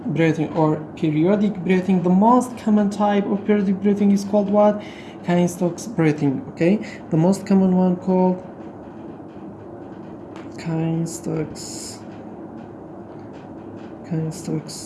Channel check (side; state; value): both; identical; correlation 1.00